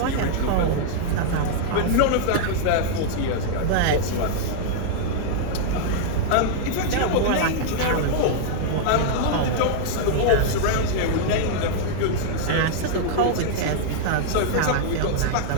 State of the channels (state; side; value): different; both; correlation -0.01